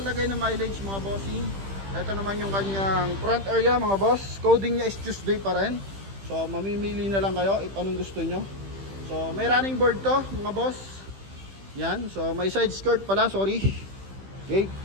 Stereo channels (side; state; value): left; late; 15 ms